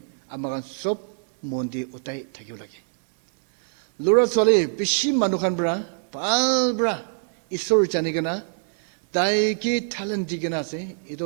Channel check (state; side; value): silent; left; digital silence